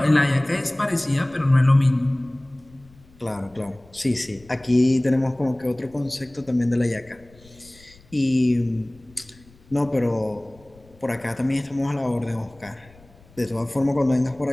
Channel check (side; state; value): left; noise; rumble, 26 dB below the sound